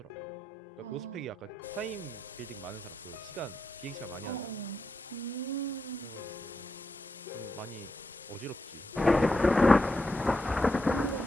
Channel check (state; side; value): normal; both; correlation 0.85